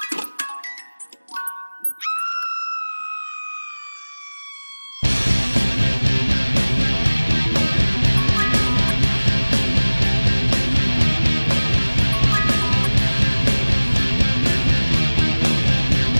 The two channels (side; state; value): both; inverted; correlation -1.00